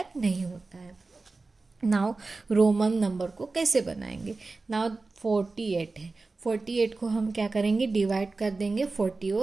नहीं होता है। नाउ रोमन नंबर को कैसे बनाएंगे। नाउ 48 है, 48 को हम क्या करेंगे, डिवाइड कर देंगे 40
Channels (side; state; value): left; quieter; 3.7 dB